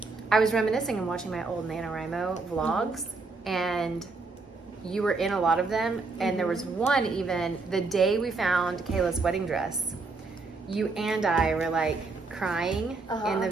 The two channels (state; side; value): quieter; left; 3.9 dB